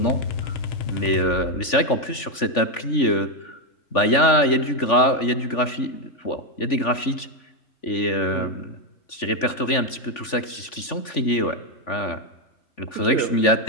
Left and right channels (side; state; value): right; late; 3.5 ms